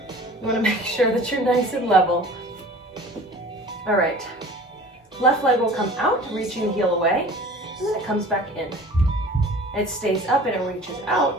want to make sure that you're nice and level. All right, left leg will come out, reaching the heel away, and then it comes back in. It stays up and it reaches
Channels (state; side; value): normal; both; correlation 0.43